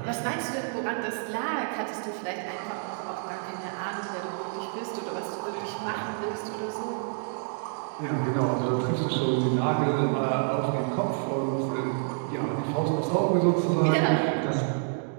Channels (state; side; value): silent; left; 59 dB below the other